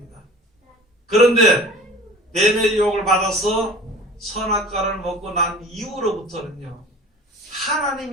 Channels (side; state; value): both; normal; correlation 0.43